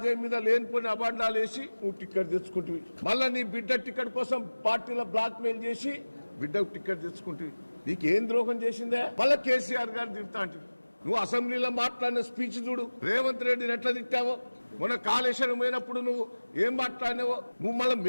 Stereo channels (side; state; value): both; inverted; correlation -1.00